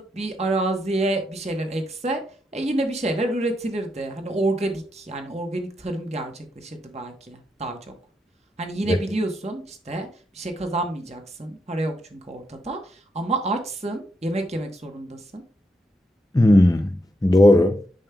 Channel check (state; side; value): normal; both; correlation 0.82